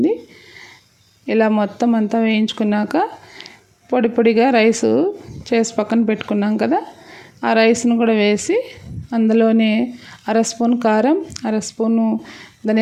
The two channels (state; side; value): identical; both; correlation 1.00